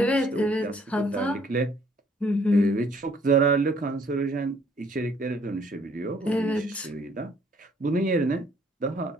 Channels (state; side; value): normal; both; correlation 0.62